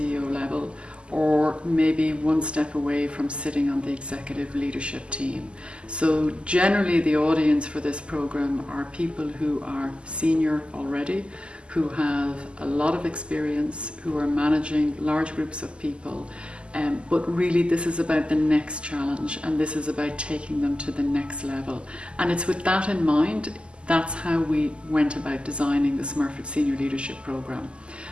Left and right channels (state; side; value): late; left; 0.052 ms